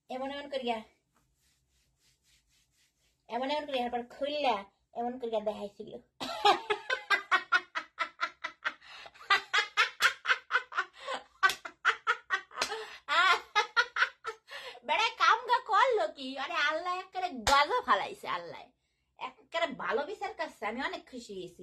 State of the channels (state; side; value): identical; both; correlation 1.00